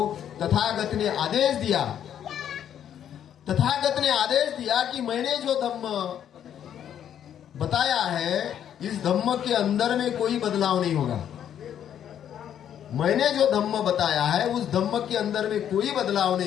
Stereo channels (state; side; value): quieter; right; 9.7 dB